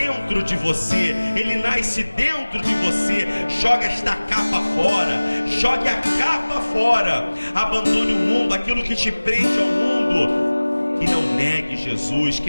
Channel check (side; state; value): both; inverted; correlation -1.00